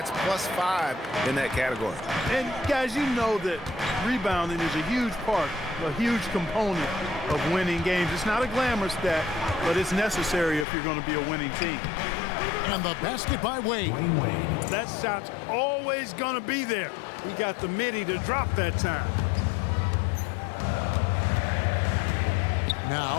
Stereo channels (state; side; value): drops out; right; at 10.7 s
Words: +5 in that category. And, guys, you know that rebounding is a huge part, a huge component of winning games. It's not a glamour stat, but it's necessary if you're going to be a winning team. And the basket by Wade. That shot's always going to be there. He got the midi to drop that time.